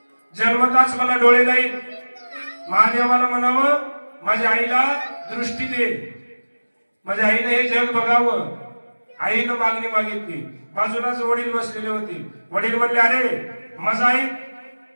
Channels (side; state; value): both; inverted; correlation -1.00